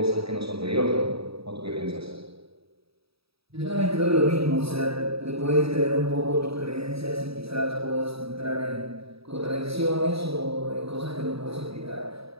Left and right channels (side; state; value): left; late; 0.77 ms